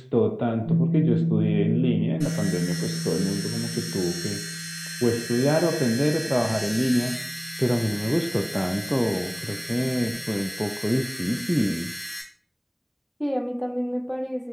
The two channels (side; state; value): both; identical; correlation 1.00